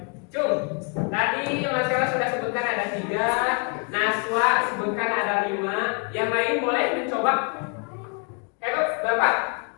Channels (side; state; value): right; quieter; 37.2 dB